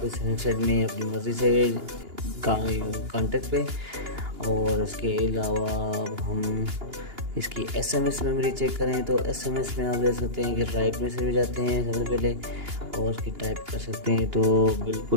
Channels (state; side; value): late; left; 2.9 ms